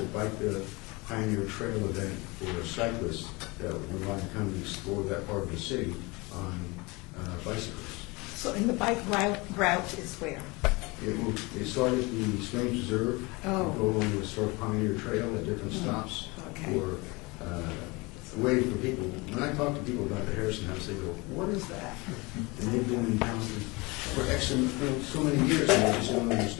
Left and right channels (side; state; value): right; quieter; 25.3 dB